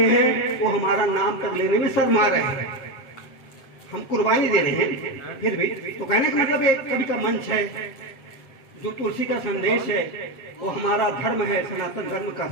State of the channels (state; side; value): late; right; 7.6 ms